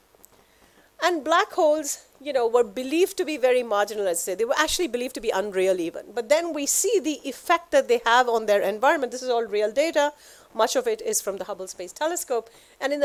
And black holes, you know, were believed to be very marginal, let's say. They were actually believed to be unreal even. But then we see the effect that they have on their environment. This is all real data. Much of it is from the Hubble Space Telescope. And in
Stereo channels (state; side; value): identical; both; correlation 1.00